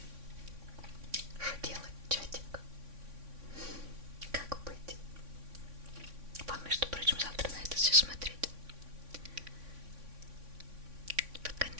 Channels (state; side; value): late; left; 3.6 ms